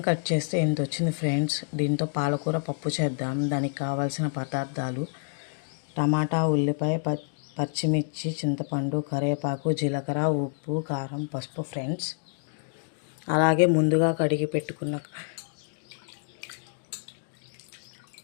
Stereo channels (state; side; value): silent; right; digital silence